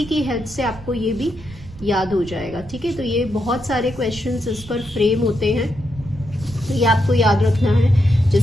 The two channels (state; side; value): noise; right; rumble, 17 dB below the sound